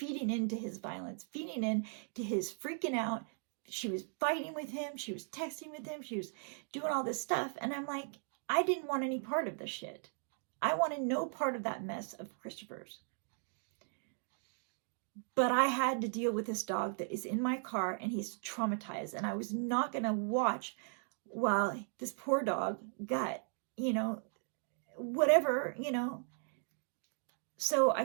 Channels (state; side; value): silent; left; 53 dB below the other